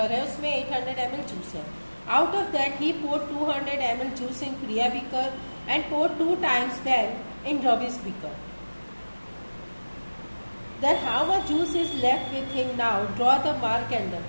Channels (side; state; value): both; inverted; correlation -1.00